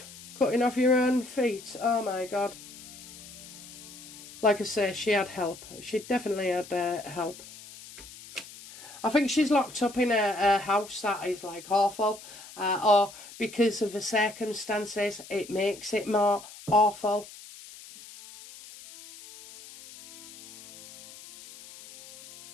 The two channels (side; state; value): left; noise; hiss, 17 dB below the sound